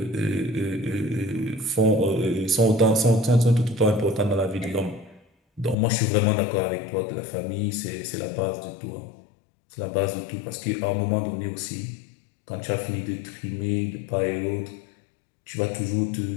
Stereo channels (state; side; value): drops out; right; at 5.8 s